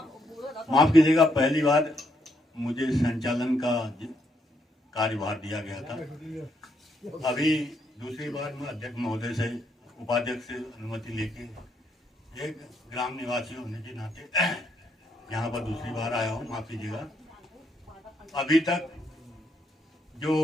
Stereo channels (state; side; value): normal; both; correlation 0.75